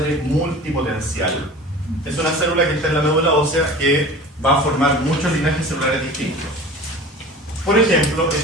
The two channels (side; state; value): both; normal; correlation 0.39